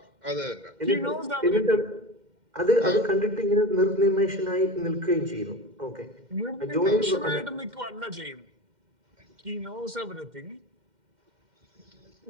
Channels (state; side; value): late; left; 2.1 ms